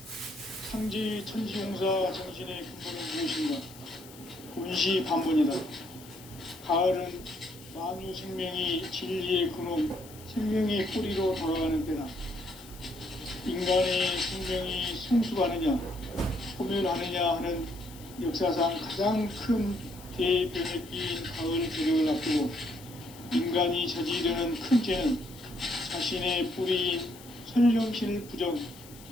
상제의 천지공사 정신의 근본은 무엇인가? 온시반문이다. 가을은 만유 생명이 진리의 근원, 생명의 뿌리로 돌아가는 때다. 인간의 생명이 성숙하느냐, 소멸하느냐 하는 역사상 가장 큰 대변혁기인 가을 개벽을 앞두고 인간이 저지르는 큰 죄는 자신의 뿌리인 설령신을 부정,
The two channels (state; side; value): noise; left; hiss, 19 dB below the sound